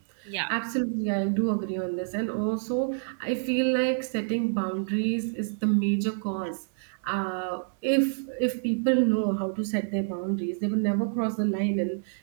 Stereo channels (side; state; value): left; silent; 59 dB below the other